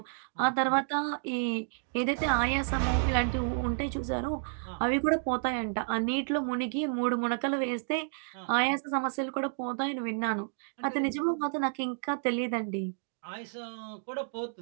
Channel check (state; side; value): silent; left; digital silence